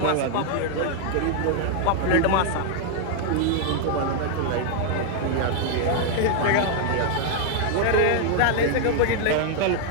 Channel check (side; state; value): both; different; correlation 0.00